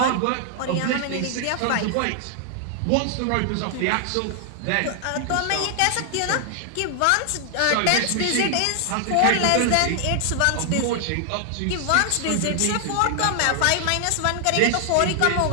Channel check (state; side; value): different; both; correlation 0.00